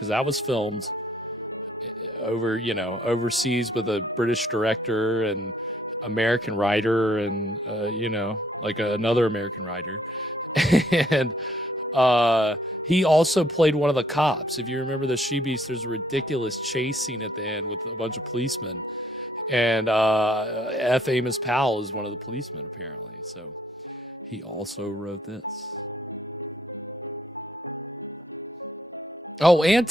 that was filmed overseas with a British director and American writer and another American writer. And he also played one of the cops. If you remember The She-Beast, there's a ridiculous chase scene at the end with a bunch of policemen, and F. Amos Powell is one of the policemen apparently, so he also wrote this. Oh, and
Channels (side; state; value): both; normal; correlation 0.66